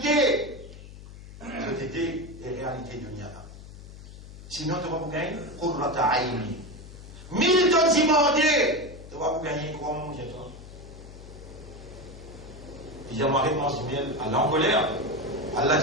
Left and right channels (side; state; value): left; noise; hum, 16 dB below the sound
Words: C'était les réalités de Niana. Sinon, tu vas vous gagner Qurrata Aini. 1000 tonnes demandées. Tu vas vous gagner comment manger toi? Il y a ma réponse du miel à l'encolère. Allah